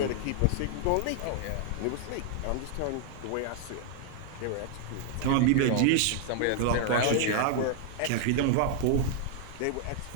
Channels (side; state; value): both; different; correlation 0.00